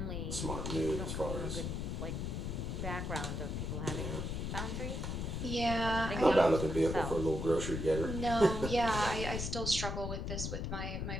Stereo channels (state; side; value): noise; left; rumble, 3 dB below the sound